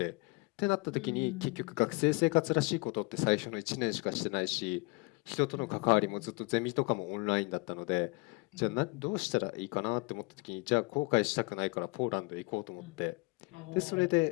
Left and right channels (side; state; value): right; quieter; 27.4 dB